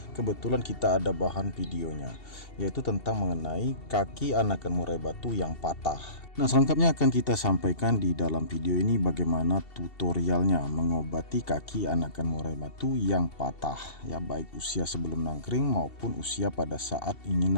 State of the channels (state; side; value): late; right; 2.7 ms